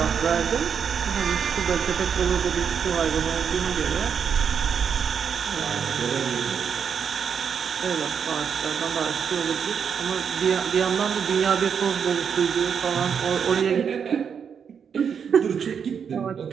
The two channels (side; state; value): left; quieter; 7.1 dB